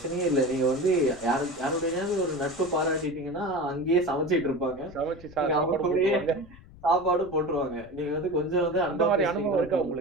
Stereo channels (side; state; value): left; noise; rumble, 21 dB below the sound